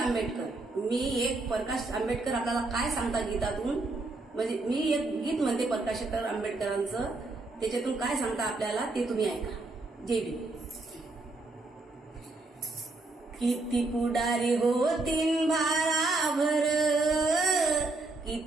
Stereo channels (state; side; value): quieter; left; 3.3 dB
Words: मी एक प्रकाश आंबेडकर आपल्याला काय सांगता गीतातून, म्हणजे मी एक गीत म्हणते प्रकाशकर आंबेडकरांचं, त्याच्यातून काय सांगता आपल्याला ते तुम्ही ऐका. जय भीम. किती पुढारी होतीन भाराभर,